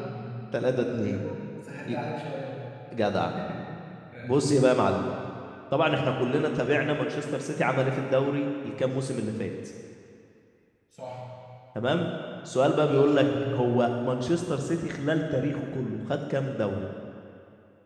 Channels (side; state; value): both; identical; correlation 1.00